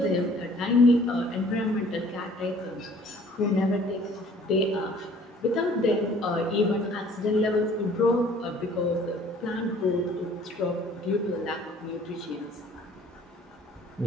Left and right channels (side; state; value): both; normal; correlation 0.54